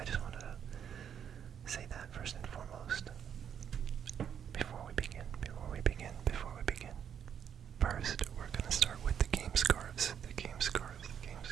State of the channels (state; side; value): quieter; left; 8.4 dB